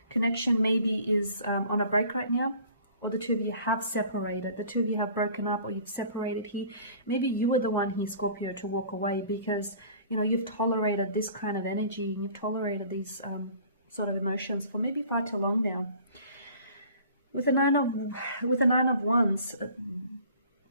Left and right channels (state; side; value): inverted; both; correlation -0.49